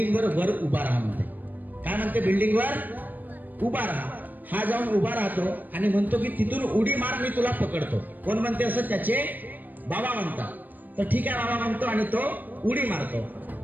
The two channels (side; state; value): left; late; 0.086 ms